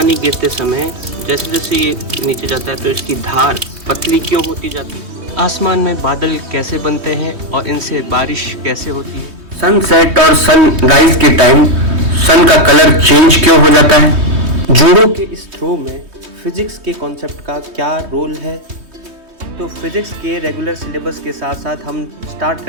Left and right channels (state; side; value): late; left; 3.2 ms